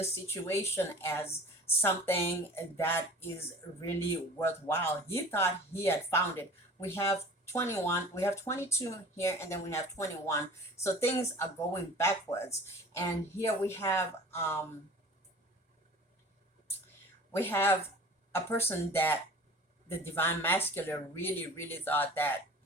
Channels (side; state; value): both; normal; correlation 0.43